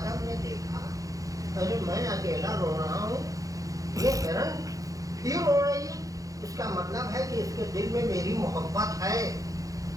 ने देखा, अरे मैं अकेला रो रहा हूँ, ये हिरन क्यों रो रही है? इसका मतलब है कि इसके दिल में मेरी मोहब्बत है।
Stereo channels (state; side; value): late; left; 0.17 ms